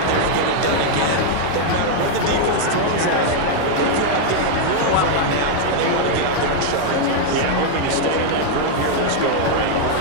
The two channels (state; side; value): different; both; correlation 0.00